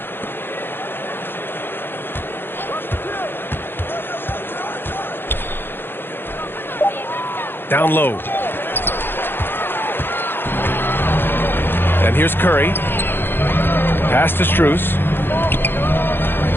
Down low. And here's Curry. Pass to Strus.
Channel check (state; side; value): late; right; 0.10 ms